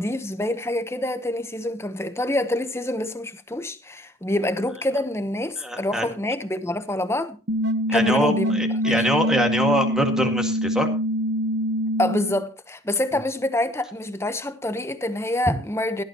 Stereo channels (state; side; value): normal; both; correlation 0.58